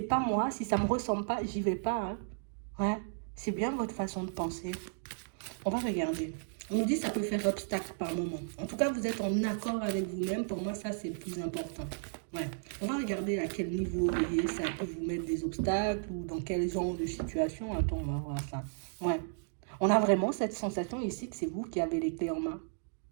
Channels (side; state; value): left; silent; digital silence